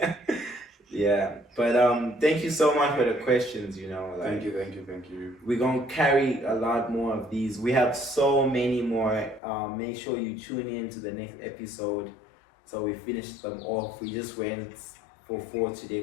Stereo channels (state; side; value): drops out; right; at 9.4 s